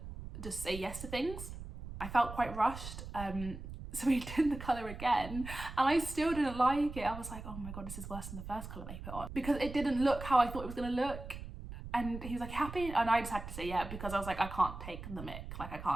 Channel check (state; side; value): noise; right; rumble, 10 dB below the sound